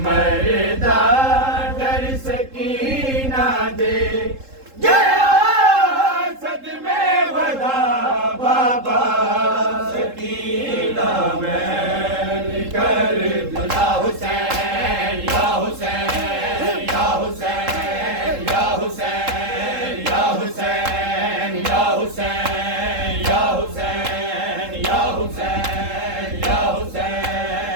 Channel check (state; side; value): late; left; 3.7 ms